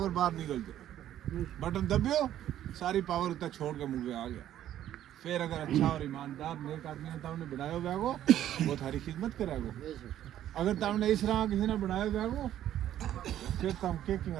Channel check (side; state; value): left; quieter; 11.8 dB